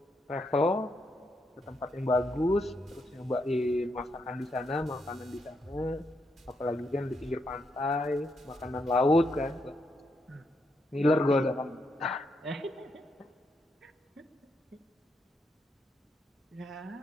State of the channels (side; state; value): both; normal; correlation 0.79